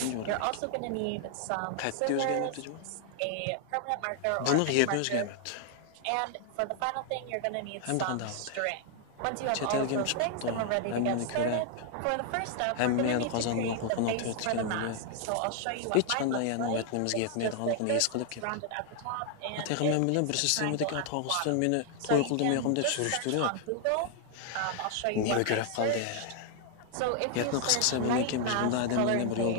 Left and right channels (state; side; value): different; both; correlation 0.00